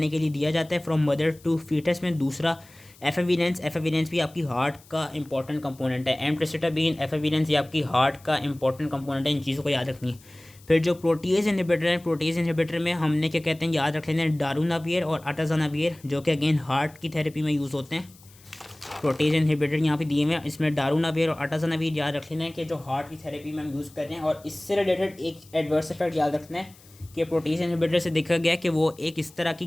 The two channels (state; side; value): noise; left; hiss, 25 dB below the sound